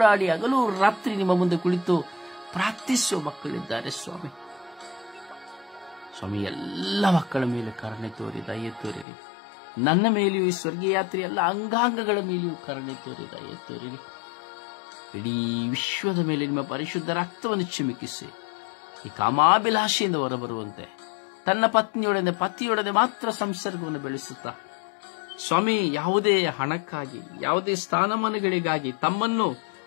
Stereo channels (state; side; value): drops out; right; at 9.1 s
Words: ಹಗಲು ರಾತ್ರಿ ನಿಮ್ಮ ಮುಂದೆ ಕುಳಿತು ಪ್ರಾರ್ಥಿಸುವ ಮಕ್ಕಳಿದ್ದಾರೆ ಸ್ವಾಮಿ. ಸ್ವಾಮಿ, ಎಲ್ಲ ಮಕ್ಕಳ ಮೇಲೆ ಕರುಣೆ ತೋರಿ, ದಯೆ ತೋರಿರಿ. ನನ್ನ ಮೇಲೆಯೂ ಈ ಸ್ವರ್ಗೀಯ ಯಾತ್ರೆ ಎಲ್ಲ ಅಂಗಾಂಗಗಳ ಮೇಲೆಯೂ ಕರುಣೆ ತೋರಿ, ದಯೆ ತೋರಿರಿ. ಇಡೀ ವಿಶ್ವದ ಮೇಲೆ ನಿಮ್ಮ ಪರಿಶುದ್ಧ ರಕ್ತವನ್ನು ಚಿಮುಕಿಸಿ ಈ ಕಾಮಾಭಿಲಾಷೆಯಿಂದ ಹೊರಬರುವಂತೆ, ತನ್ನ ಪತಿಯೊಡನೆ ಮಾತ್ರ ಸಂಸರ್ಗವನ್ನು ಬೆಳೆಸುತ್ತಾ ಸ್ವಾಮಿ, ಯಾವುದೇ ಹಣಕ್ಕಾಗಿ, ಯಾವುದೇ ಸ್ಥಾನಮಾನಗಳಿಗಾಗಿ ತಮ್ಮನ್ನು